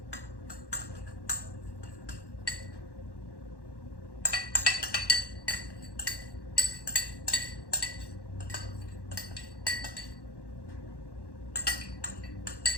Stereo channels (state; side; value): late; right; 1.1 ms